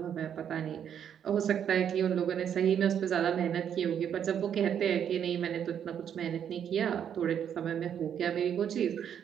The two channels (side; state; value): left; quieter; 8.8 dB